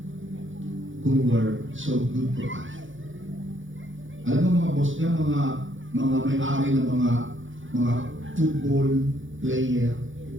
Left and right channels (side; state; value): left; late; 0.56 ms